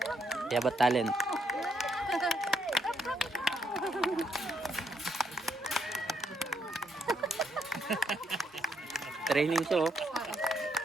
Kaya ba talent? Training siya oh.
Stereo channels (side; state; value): both; normal; correlation 0.75